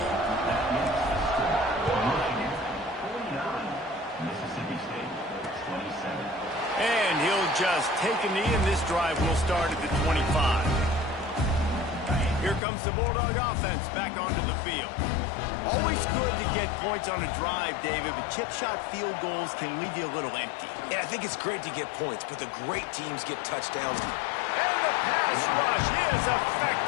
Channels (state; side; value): drops out; right; at 12.6 s